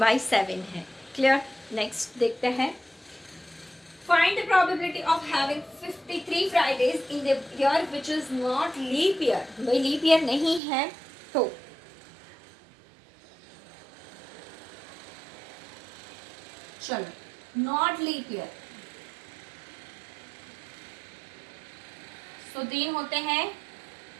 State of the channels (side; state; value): left; drops out; at 10.6 s